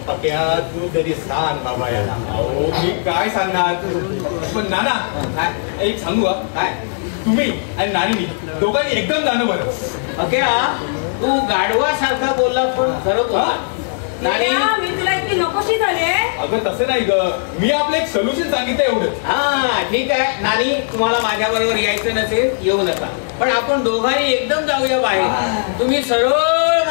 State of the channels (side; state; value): right; silent; digital silence